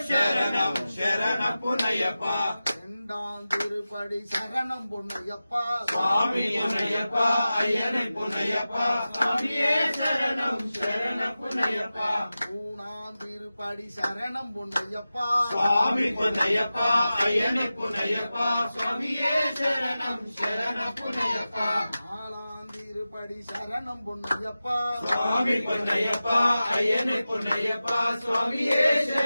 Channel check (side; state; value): both; inverted; correlation -0.95